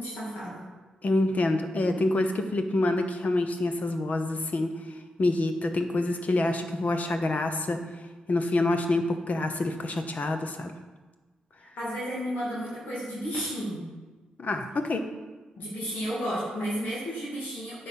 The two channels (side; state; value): both; normal; correlation 0.87